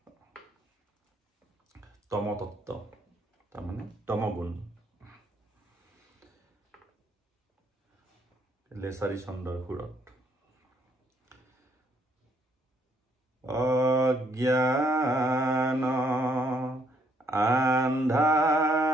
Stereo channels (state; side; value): normal; both; correlation 0.69